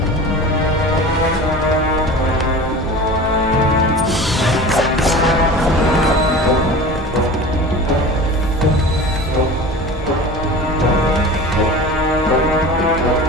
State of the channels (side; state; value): both; normal; correlation 0.35